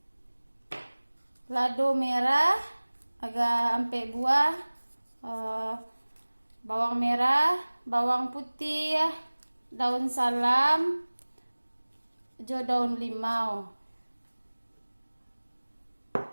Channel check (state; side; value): inverted; both; correlation -1.00